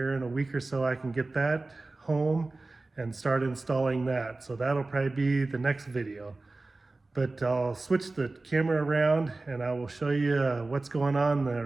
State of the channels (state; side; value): quieter; left; 3.3 dB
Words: in a week or so, I can get that home and start installing that. So that'll probably be the next video. But I'll switch the camera around and I will show you what's going on in